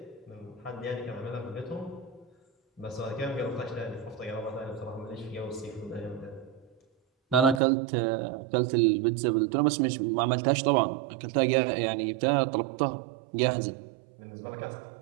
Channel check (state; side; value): drops out; left; at 7.6 s